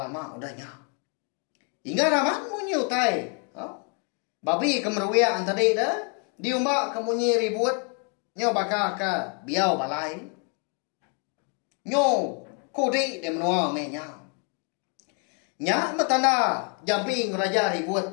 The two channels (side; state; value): right; quieter; 39.1 dB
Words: lama udahnya. Hingga raman munyi utai. Babi kemeruian tadi dah. Diumbak kemunyi ribut. Nyo bakal ke biau balai. Nyo kudi dia menua menya. Nya metanda jamping raja ribut.